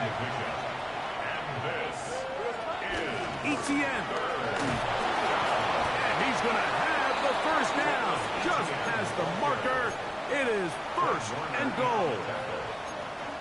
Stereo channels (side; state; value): both; identical; correlation 1.00